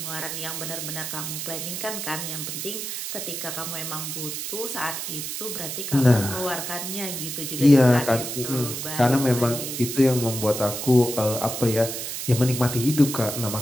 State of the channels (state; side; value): noise; right; hiss, 5 dB below the sound